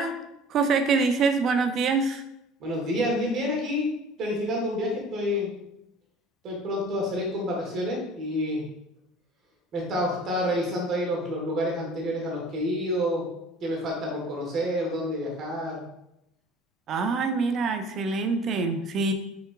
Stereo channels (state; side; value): normal; both; correlation 0.47